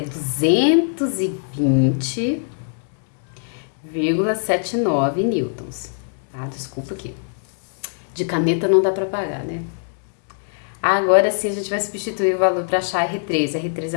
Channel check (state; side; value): silent; right; 64 dB below the other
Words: 220 0,79 newtons, tá? Desculpa aqui. De caneta não dá para pagar, né? Agora sim a gente vai substituir o valor para achar R3. A R3